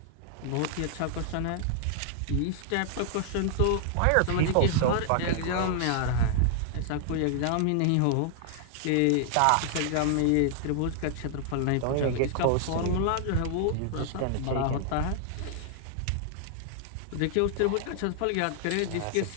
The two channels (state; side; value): different; both; correlation -0.01